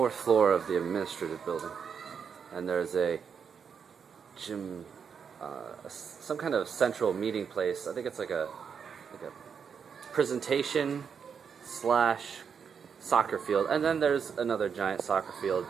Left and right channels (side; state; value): left; quieter; 6.7 dB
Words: floor of the administrative building, and there's a gym, some kind of central meeting place. I think it's like a presentation slash soccer field, and then there's another giant soccer field